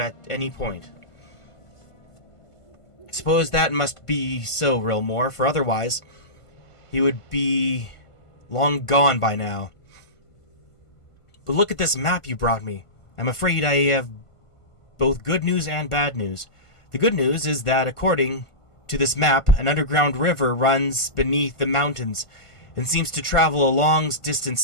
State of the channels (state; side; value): late; right; 1.5 ms